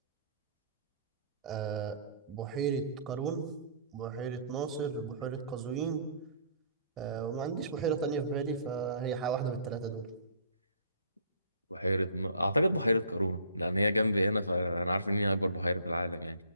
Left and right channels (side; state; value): both; inverted; correlation -0.56